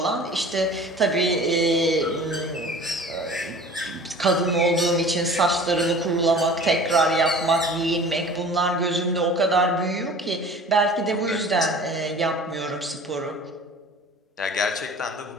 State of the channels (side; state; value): both; normal; correlation 0.43